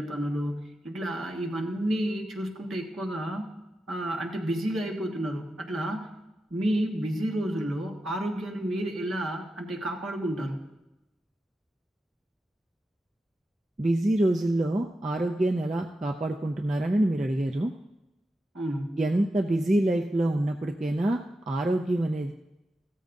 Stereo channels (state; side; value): normal; both; correlation 0.90